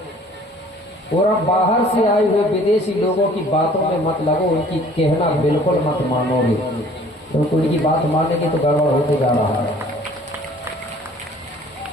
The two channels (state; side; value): normal; both; correlation 0.53